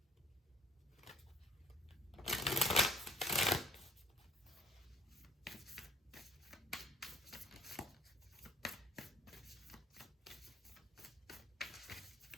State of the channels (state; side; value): normal; both; correlation 0.56